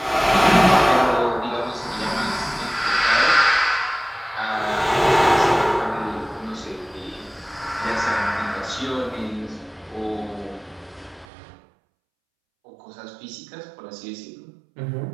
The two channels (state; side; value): drops out; left; at 11.2 s